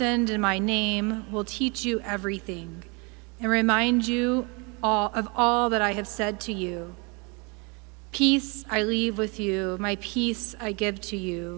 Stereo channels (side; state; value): left; quieter; 31.0 dB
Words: in my name, will teach you everything and remind you of all that I have said to you. Peace I leave with you, my peace I give to